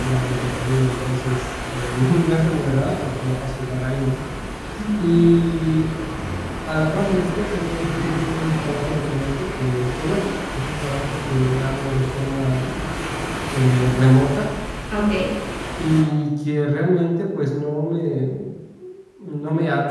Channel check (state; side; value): identical; both; correlation 1.00